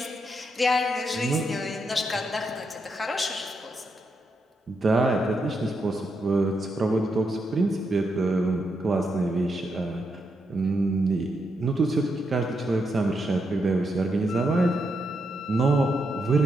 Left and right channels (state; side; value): normal; both; correlation 0.82